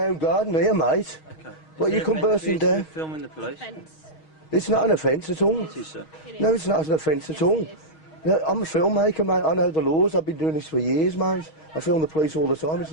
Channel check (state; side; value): late; right; 6.3 ms